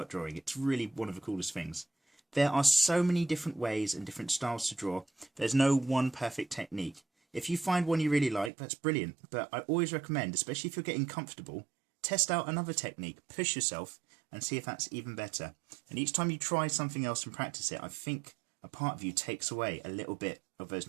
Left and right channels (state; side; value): drops out; left; at 8.5 s